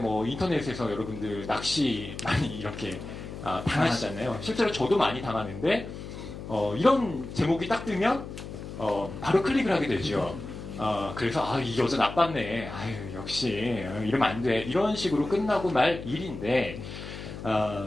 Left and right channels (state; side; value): noise; left; hum, 10 dB below the sound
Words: 인터넷에서 여러분들 낚시 많이 이렇게 당하시잖아요. 실제로 저도 많이 당하는데 이런 제목이 딱 뜨면 바로 클릭을 하게 되죠. 그래서 이 여자 나빴네. 아유, 역시 이러면 안 돼. 이런 식으로 끝나고 말 일인데